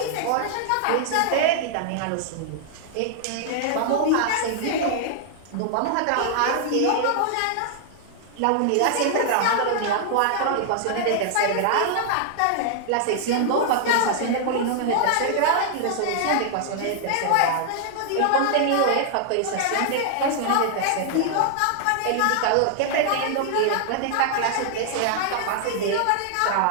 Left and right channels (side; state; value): both; different; correlation -0.01